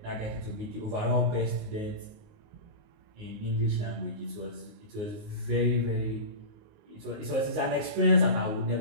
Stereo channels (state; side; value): late; left; 19 ms